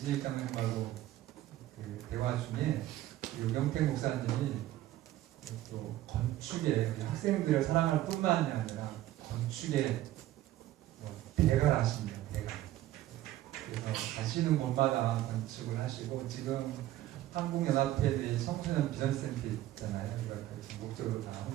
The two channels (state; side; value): quieter; left; 14.5 dB